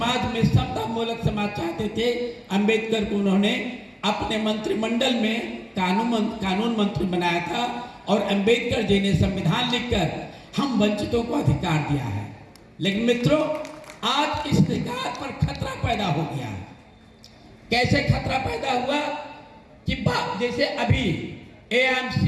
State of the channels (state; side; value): identical; both; correlation 1.00